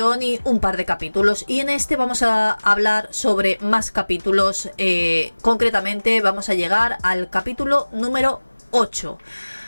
y un par de capítulos, y en este vamos a hablar sobre más capítulos. Concretamente vamos a llegar al capítulo número 8,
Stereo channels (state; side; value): inverted; both; correlation -1.00